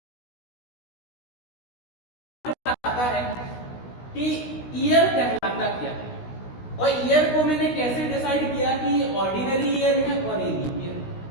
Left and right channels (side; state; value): right; late; 16 ms